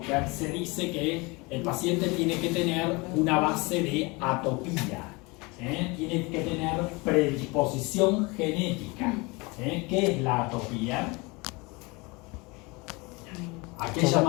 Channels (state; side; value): quieter; right; 26.3 dB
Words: se dice que el paciente tiene que tener una base de atopía. Tiene que tener predisposición genética. ¿Qué es la atopía? ¿A qué